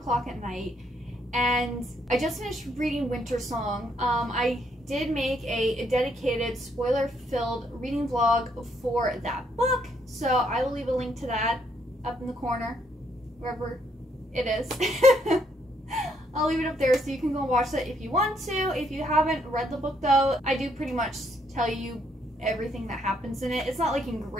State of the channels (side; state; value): both; normal; correlation 0.72